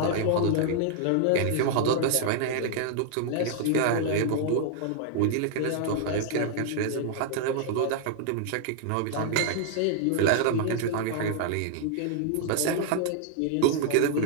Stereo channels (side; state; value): both; different; correlation 0.00